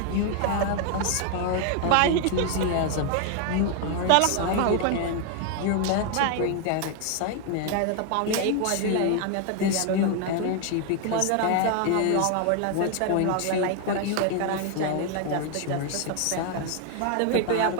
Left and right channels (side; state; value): both; different; correlation 0.01